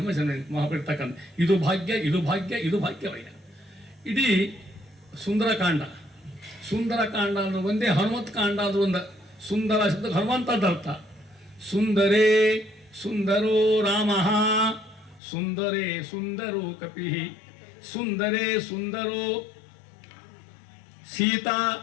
ಜನ್ಮ ಮಹಾಬಿರ್ತಕ್ಕಂಥ ಇದು ಭಾಗ್ಯ, ಇದು ಭಾಗ್ಯ, ಇದು ಭಾಗ್ಯವಯ್ಯ. ಇಡೀ ಸುಂದರಕಾಂಡ ಅಂದ್ರೆ ಒಂದೇ, ಹನುಮತ್ ಕಾಂಡ ಅಂದ್ರೆ ಒಂದು. ಸುಂದರ ಶಬ್ದ ಹನುಮಂತದ ಅರ್ಥ. ಸುಂದರೇ ಸುಂದರೋ ರಾಮ, ಸುಂದರೇ ಸುಂದರೋ ಕಪಿ, ಸುಂದರೇ ಸುಂದರೋ ಸೀತಾ,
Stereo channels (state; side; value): drops out; right; at 15.2 s